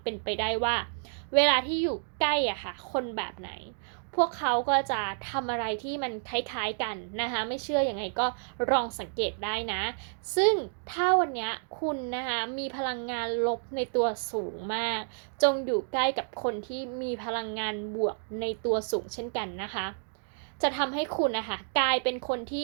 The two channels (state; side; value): silent; left; digital silence